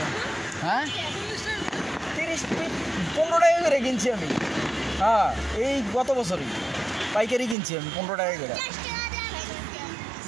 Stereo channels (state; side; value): drops out; left; at 7.6 s